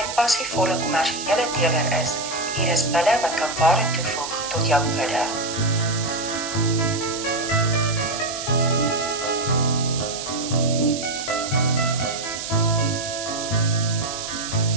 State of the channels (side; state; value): right; noise; hiss, 7 dB below the sound